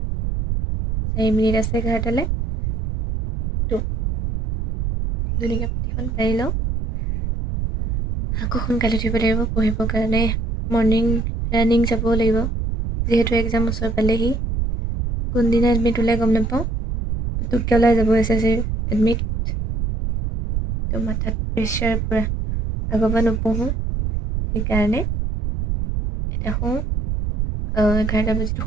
4 মিনিট আছে 11টালৈ তো ধুনীয়াকৈ পাতিখন পাৰি লওঁ আকৌ সোনকালে উঠিব লাগিব পঢ়িবৰ কাৰণে মৰ্ণিং ৰানিং যাব লাগিব যিহেতু এক্সাম ওচৰ পালেহি কোনদিনা এডমিট ওলাই গম নাপাওঁ পুতুককৈ ওলাই যাব SSC এডমিট তো মাথাত প্ৰেছাৰ পূৰা আগৰ পৰা নপঢ়োঁ সেইকাৰণে এতিয়া শুওঁ 11টা বাজিতো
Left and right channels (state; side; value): noise; right; rumble, 2 dB below the sound